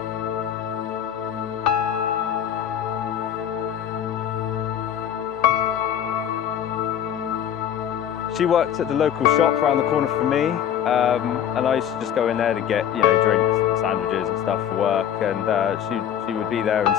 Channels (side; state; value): right; quieter; 9.6 dB